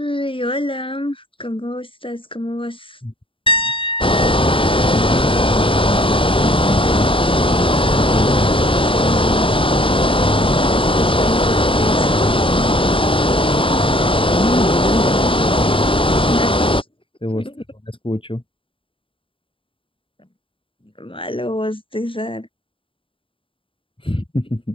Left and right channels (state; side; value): late; right; 0.25 ms